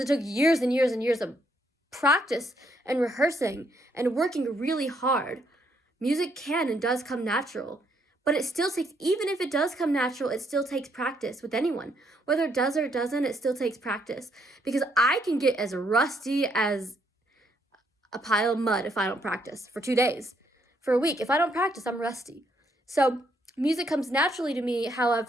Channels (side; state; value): both; normal; correlation 0.73